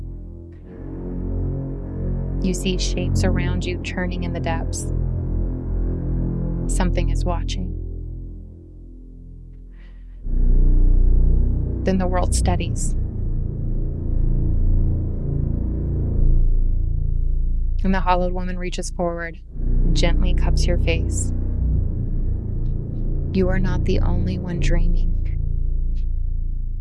You see shapes around you turning in the depths. Something is watching. Then the world steadies. And the hollowed woman reaches forward, gently cups your face. You are not the only one dreaming.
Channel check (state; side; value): identical; both; correlation 1.00